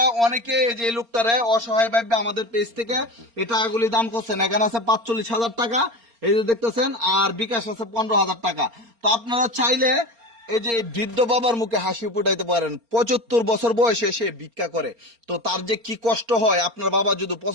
অনেকে এই যে লোকটারে অসহায় ভাবে আমাদের পেজ থেকে এই টাকাগুলি দান করছেন। এখানে আছে 45,000 টাকা, এই যে দেখতেছেন, আর বিকাশ আছে 15,000 টাকা। তো আপনারা চাইলে এই যে বৃদ্ধ বাবার মুখে হাসি ফুটাইতে পারেন। 75 বছর বয়সে সে ভিক্ষা করে, তো তার যে কি কষ্ট হয়। আপনার বাবা যদি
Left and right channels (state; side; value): late; left; 4.3 ms